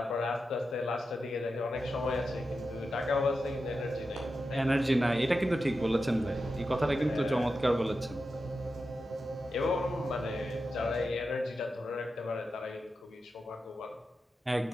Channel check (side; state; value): both; normal; correlation 0.90